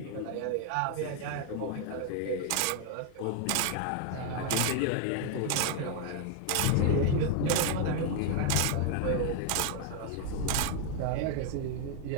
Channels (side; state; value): both; different; correlation 0.00